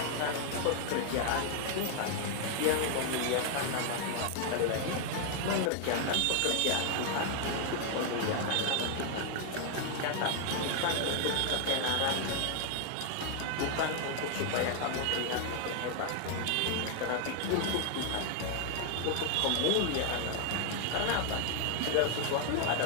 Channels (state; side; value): different; both; correlation 0.00